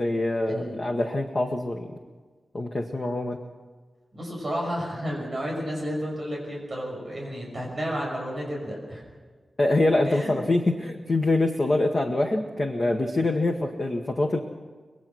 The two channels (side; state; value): both; normal; correlation 0.94